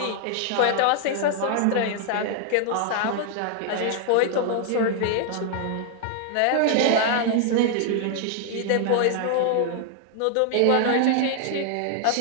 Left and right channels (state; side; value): different; both; correlation 0.00